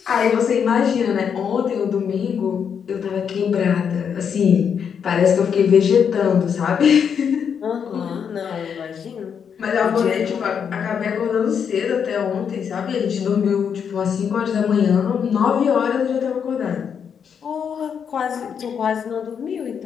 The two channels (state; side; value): quieter; right; 7.3 dB